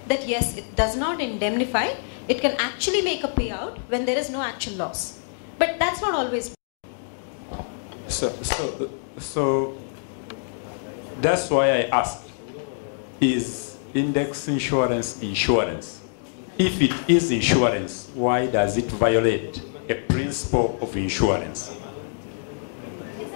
that yes, it does not indemnify, it can actually make a payout when there is no actual loss. But that's not always. So that's why I asked, is index insurance insurance? If it is insurance, why does it violate a principle of insurance?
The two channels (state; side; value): silent; right; digital silence